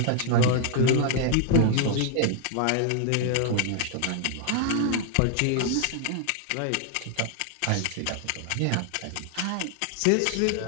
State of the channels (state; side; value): different; both; correlation 0.00